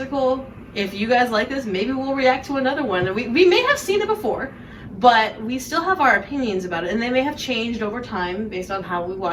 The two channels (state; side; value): identical; both; correlation 1.00